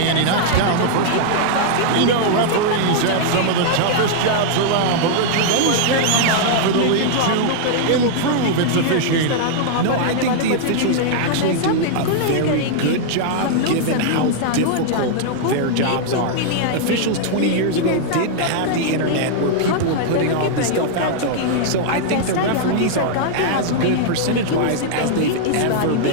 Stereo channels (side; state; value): both; different; correlation -0.01